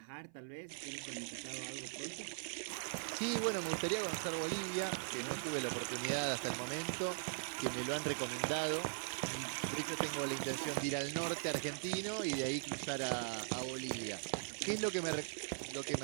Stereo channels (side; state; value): left; silent; 51 dB below the other